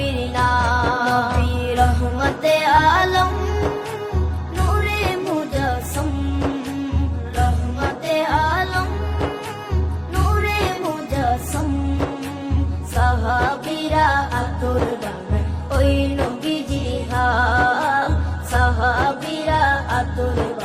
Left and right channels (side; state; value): both; identical; correlation 1.00